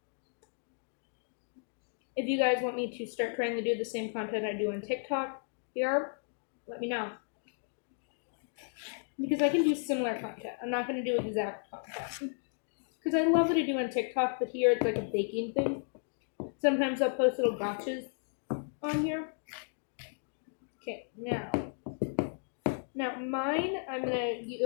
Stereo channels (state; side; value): silent; right; digital silence